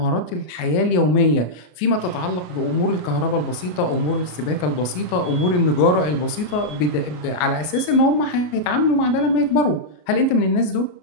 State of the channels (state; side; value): late; right; 33 ms